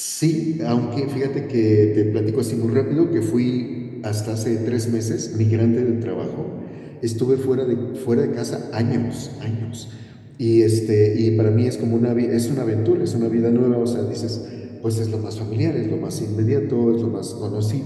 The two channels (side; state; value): both; identical; correlation 1.00